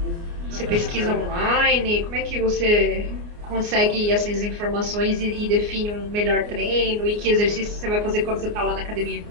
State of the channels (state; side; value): late; left; 29 ms